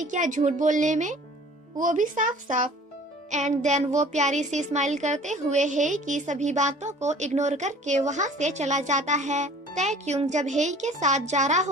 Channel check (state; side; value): normal; both; correlation 0.48